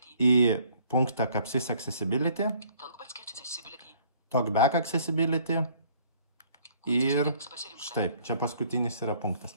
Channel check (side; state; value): both; inverted; correlation -0.59